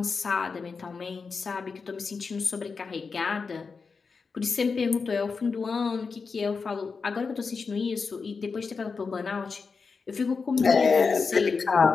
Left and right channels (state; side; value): quieter; right; 4.9 dB